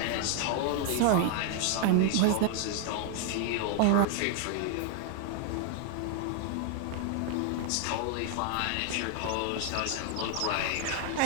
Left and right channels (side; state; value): both; different; correlation -0.01